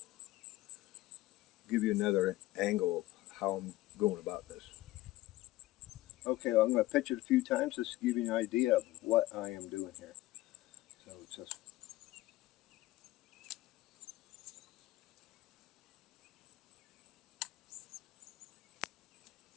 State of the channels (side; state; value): right; quieter; 17.1 dB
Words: give you another angle of how I'm going about this. Okay, well, I'm going to pitch it a few times just to give you an idea of what I am doing here. So it's just